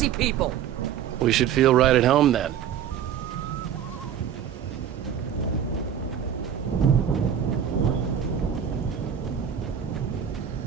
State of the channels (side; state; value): left; quieter; 9.1 dB